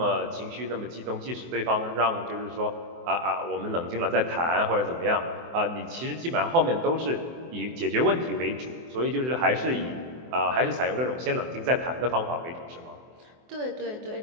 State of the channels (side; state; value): left; late; 24 ms